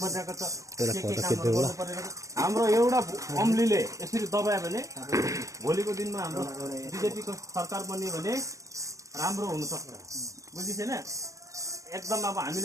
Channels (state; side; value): late; left; 0.16 ms